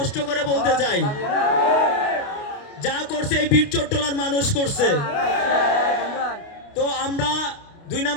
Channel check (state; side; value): late; right; 29 ms